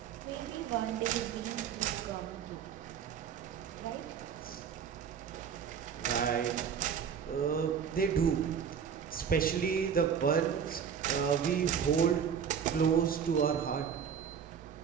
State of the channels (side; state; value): left; quieter; 7.5 dB